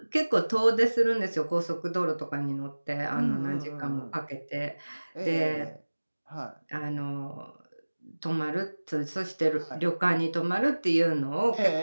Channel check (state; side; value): inverted; both; correlation -1.00